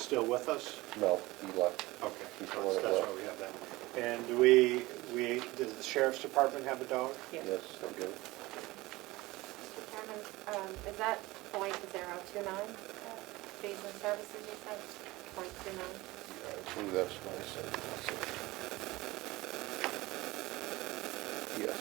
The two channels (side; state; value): left; quieter; 20.3 dB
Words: with us? No, he left. Okay, He's so the one that that's left. why we have that. And does the sheriff's department have a dog? Yes. Yes, they do. Mr. Chairman, is that .029, fees and services you said? .29? I believe that's what I said. That's it. Yes.